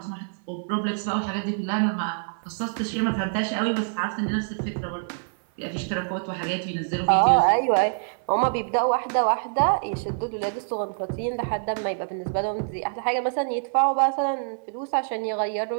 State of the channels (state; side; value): silent; left; 61 dB below the other